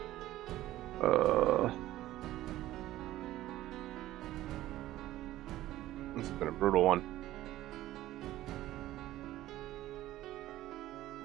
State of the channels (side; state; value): left; quieter; 15.0 dB